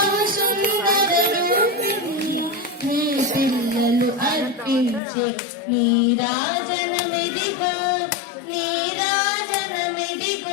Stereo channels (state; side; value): drops out; right; at 5.0 s